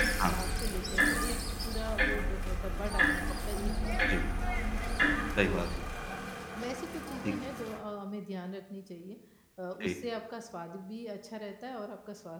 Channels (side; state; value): both; identical; correlation 1.00